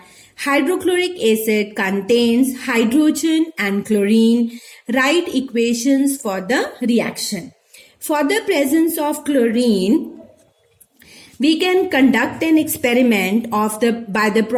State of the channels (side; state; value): both; identical; correlation 1.00